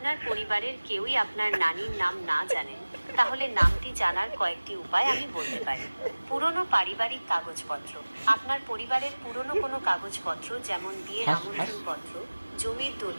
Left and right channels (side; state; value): both; inverted; correlation -1.00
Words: পরিবারের কেউই আপনার নানির নাম না জানেন, তাহলে নামটি জানার কয়েকটি উপায় আমি বলতে পারি। পুরনো পারিবারিক কাগজপত্র। আপনার পরিবারের পুরনো কোনো কাগজপত্র, যেমন বিয়ের আমন্ত্রণপত্র, জমির